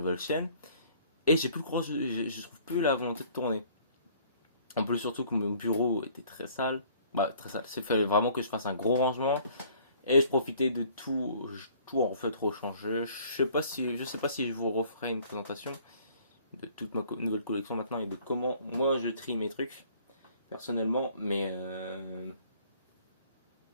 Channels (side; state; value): both; inverted; correlation -0.56